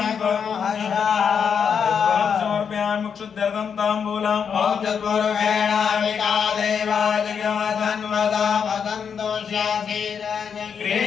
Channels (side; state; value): right; quieter; 6.9 dB